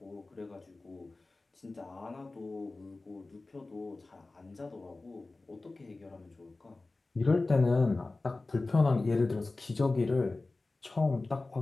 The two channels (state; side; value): quieter; right; 3.3 dB